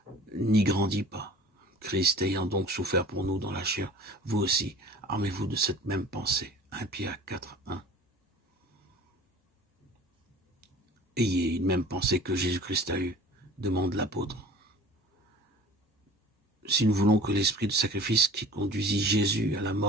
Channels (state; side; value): normal; both; correlation 0.44